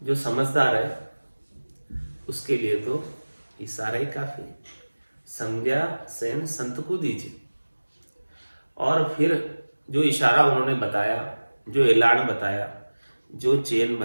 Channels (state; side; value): inverted; both; correlation -1.00